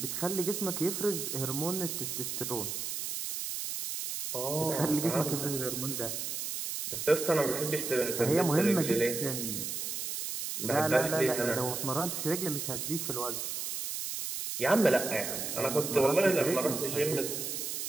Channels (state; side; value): noise; right; hiss, 4 dB below the sound